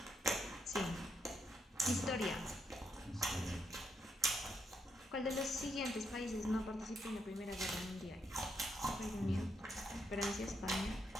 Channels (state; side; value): normal; both; correlation 0.78